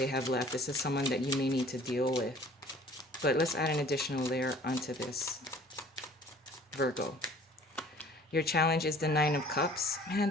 have left. This is someone that you may need to deal with. But let's add an additional layer onto this, Virgo. Your challenge is the Nine of Cups. Man,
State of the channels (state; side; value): normal; both; correlation 0.51